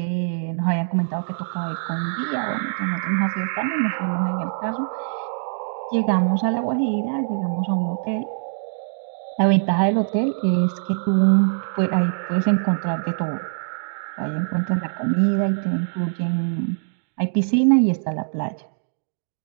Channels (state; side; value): silent; left; digital silence